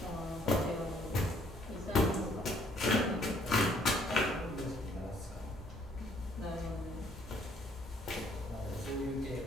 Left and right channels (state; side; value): normal; both; correlation 0.64